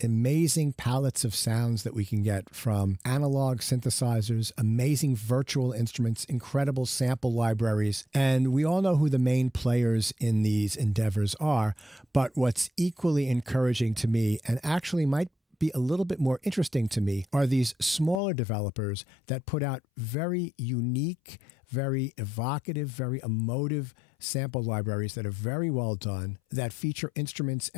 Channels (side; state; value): right; drops out; at 18.2 s